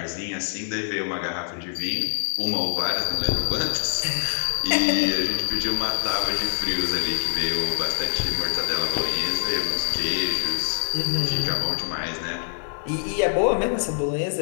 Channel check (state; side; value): silent; right; digital silence